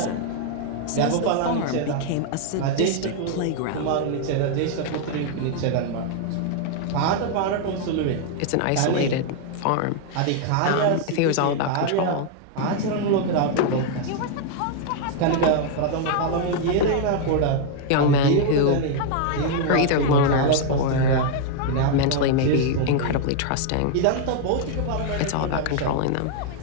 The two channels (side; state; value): both; different; correlation 0.00